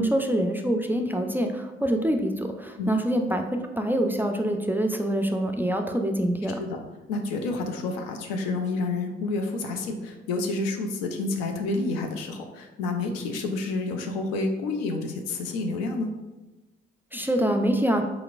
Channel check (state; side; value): normal; both; correlation 0.67